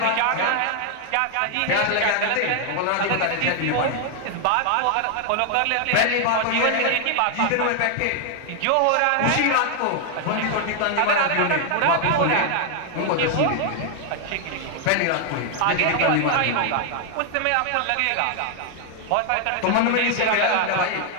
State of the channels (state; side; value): different; both; correlation 0.00